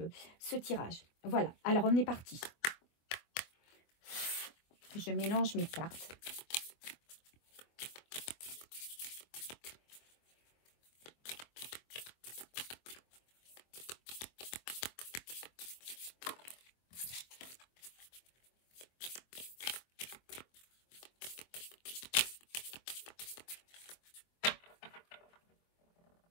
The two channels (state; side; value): late; right; 24 ms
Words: ce tirage. Voilà, alors on est parti. Je mélange mes cartes.